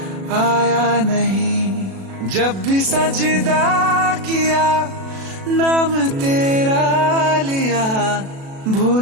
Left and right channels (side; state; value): left; late; 36 ms